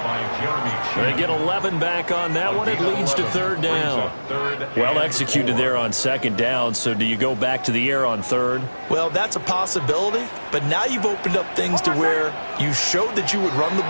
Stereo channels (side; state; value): both; inverted; correlation -1.00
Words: They get 11 back on that one. It leads to third down. Well executed there on 2nd down. So do you go back to the air on 3rd? Well, that's a possibility, but now you've opened up things to where you showed that you would run the